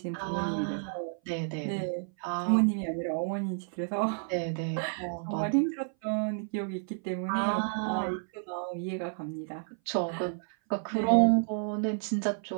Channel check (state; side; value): silent; left; 57 dB below the other